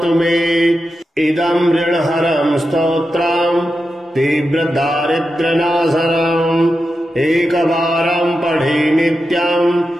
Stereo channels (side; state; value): both; normal; correlation 0.90